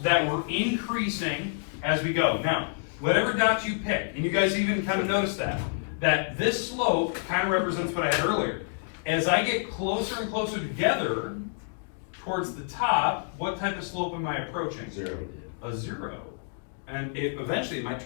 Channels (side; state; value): right; silent; digital silence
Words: that we're increasing as we go. Now, whatever dot you pick, and you guys even kind of notice that this slope kind of represents what I had earlier. As I get closer and closer together towards the top, what type of slope am I approaching? 0. A 0. And eventually it might